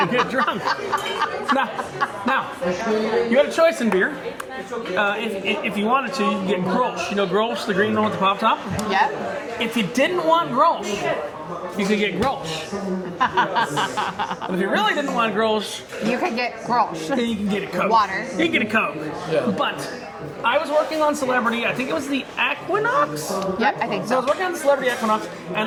get drunk. Now, you had a choice in beer. If you wanted to, you could get Grolsch. You know Grolsch, the green one with the pop top? Yep. If you didn't want Grolsch, you could get Grolsch. But if you really didn't want Grolsch, You could get Grolsch. then you can get a Coke. Water. You can get a Coke. Yeah. But I was working on Celebrity, I think it was the Equinox? Yep, I think So I so. was working on the Celebrity Equinox, and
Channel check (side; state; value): both; identical; correlation 1.00